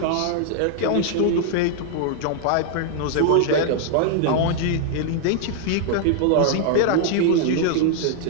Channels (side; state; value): both; different; correlation 0.00